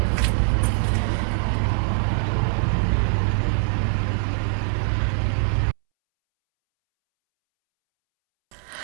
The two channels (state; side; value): silent; left; 64 dB below the other